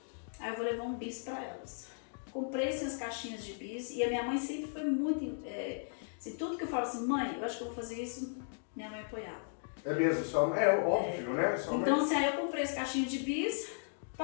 eu vou levar um bis pra elas. Comprei essas caixinhas de bis e a minha mãe sempre foi muito... assim, tudo que eu falo assim, mãe, eu acho que eu vou fazer isso, minha mãe apoiava. É mesmo, é óbvio, né? Então, assim, aí eu comprei as caixinhas de bis,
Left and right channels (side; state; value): right; silent; digital silence